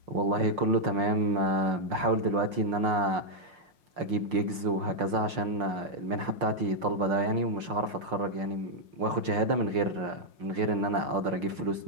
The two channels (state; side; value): late; left; 5.6 ms